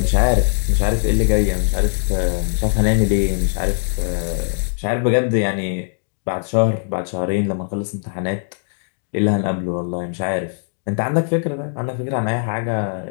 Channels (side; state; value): right; silent; digital silence